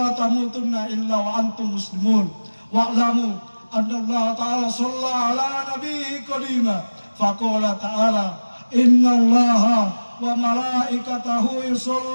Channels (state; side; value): inverted; both; correlation -1.00